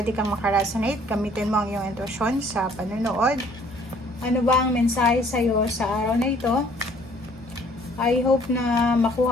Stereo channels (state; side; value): normal; both; correlation 0.58